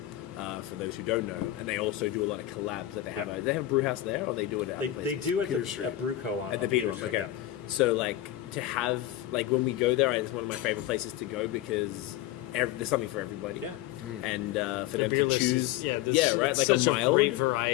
for those who don't know, and they also do a lot of collabs that they have. Yeah. Do they have a brew house there, or they do it at They places? do at Peter the Street. at Brewco on At the on Peter Peter Street. okay. So like to have like when we go there, it's one of my favorite places to go because there's something for everybody. Yeah. And for The them beer to list choose, is, there's right, like such a mild great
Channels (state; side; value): quieter; right; 14.2 dB